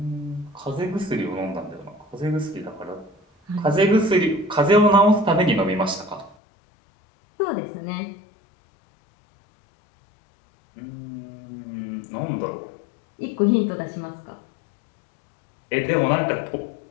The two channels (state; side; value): drops out; right; at 6.4 s